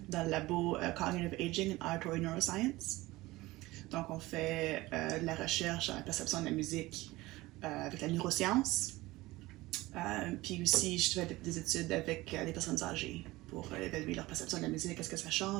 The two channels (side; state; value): left; quieter; 19.3 dB